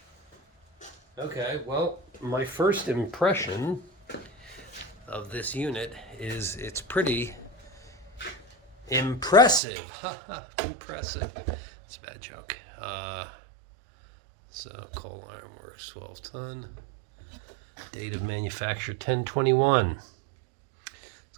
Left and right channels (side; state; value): left; drops out; at 9.6 s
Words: Okay, well, my first impression of this unit is it's pretty impressive. Haha, impressive. It's a bad joke. So, Coal Ironworks 12-ton. Date of manufacture 10/21. It's